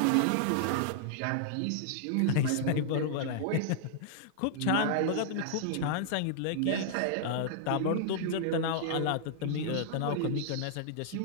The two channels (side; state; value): both; different; correlation -0.01